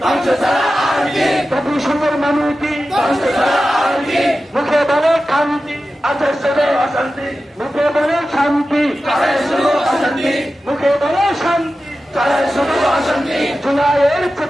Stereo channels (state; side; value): normal; both; correlation 0.93